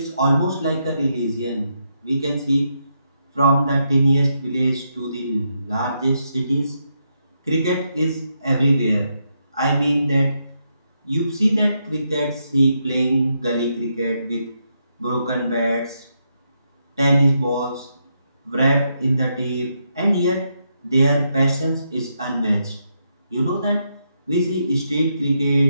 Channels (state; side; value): inverted; both; correlation -0.81